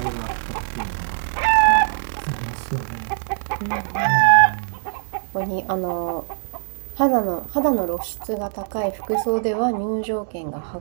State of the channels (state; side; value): silent; left; 64 dB below the other